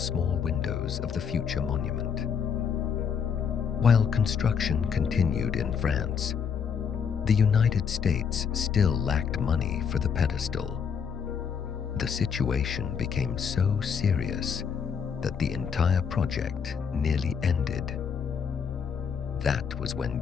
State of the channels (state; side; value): quieter; right; 6.9 dB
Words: windows of the future monument. While construction continued in France, the United States still lacked money for the pedestal. The situation became so serious that the entire project nearly ended. That was when